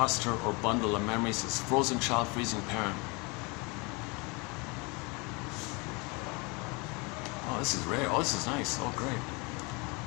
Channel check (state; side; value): quieter; right; 28.7 dB